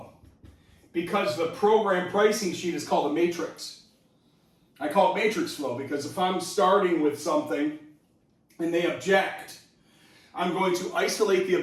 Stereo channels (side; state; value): both; identical; correlation 1.00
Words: because the program pricing sheet is called a matrix. I call it matrix flow because if I'm starting with something and they object, I'm going to isolate the